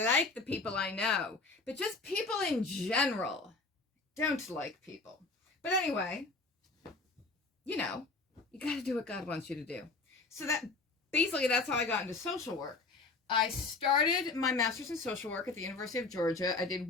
the people I know. But just people in general, don't like people. But anyway, you know, you got to do what God wants you to do. So that's how I got into social work. I started my master's in social work at the University of Georgia. I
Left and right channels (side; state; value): right; quieter; 3.7 dB